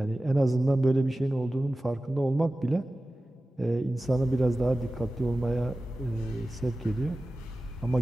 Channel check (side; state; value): both; normal; correlation 0.96